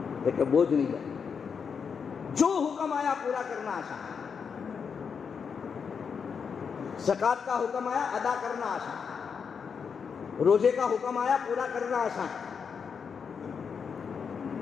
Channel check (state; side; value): quieter; right; 6.3 dB